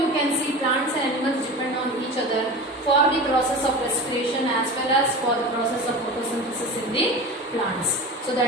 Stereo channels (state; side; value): normal; both; correlation 0.31